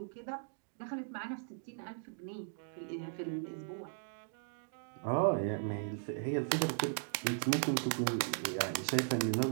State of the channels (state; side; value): silent; left; digital silence